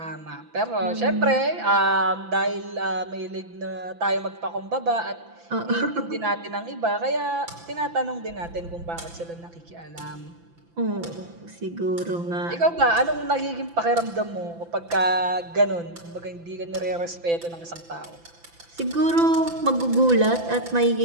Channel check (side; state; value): left; late; 5.9 ms